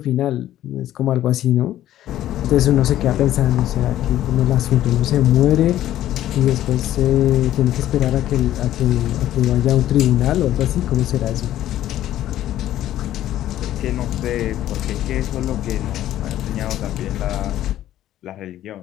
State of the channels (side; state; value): right; quieter; 12.9 dB